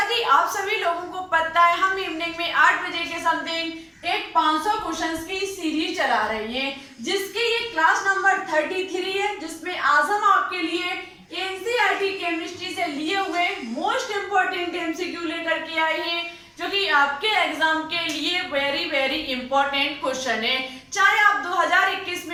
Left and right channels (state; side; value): identical; both; correlation 1.00